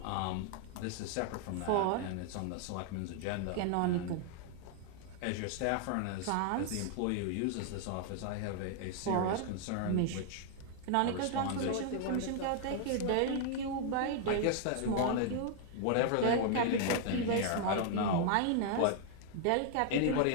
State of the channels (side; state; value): both; different; correlation 0.00